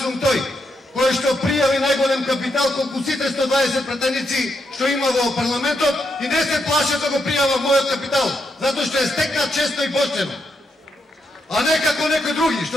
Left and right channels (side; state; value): both; normal; correlation 0.81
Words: сум тој кој што пријави најголем капитал колку сите 120 пратеници што има во парламентот и не се плаше да го пријава мојот капитал, затоа што е стекнат честно и поштено. А не како некои други